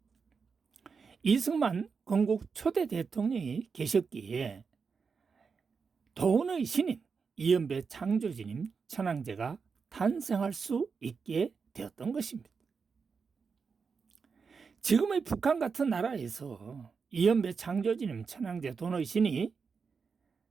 이승만 건국 초대 대통령이 계셨기에 돈의 신인 이연배 창조주님 천황제가 탄생할 수 있게 되었던 것입니다. 지금의 북한 같은 나라에서 이연배 창조주님 천황제 돈의 신이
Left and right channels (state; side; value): quieter; left; 5.4 dB